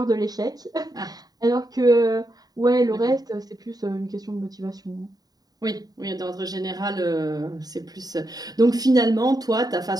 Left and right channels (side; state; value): left; late; 0.18 ms